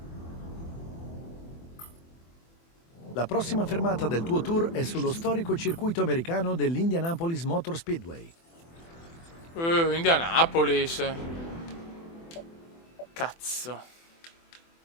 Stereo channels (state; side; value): late; right; 24 ms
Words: La prossima fermata del tuo tour è sullo storico circuito americano dell'Indianapolis Motor Speedway. Indianapolis. Cazzo.